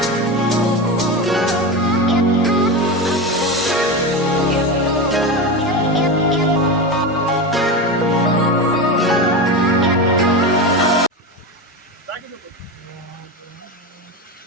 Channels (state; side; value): normal; both; correlation 0.20